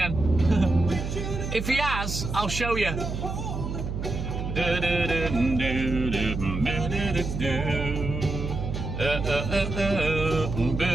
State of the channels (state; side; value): noise; right; hum, 4 dB below the sound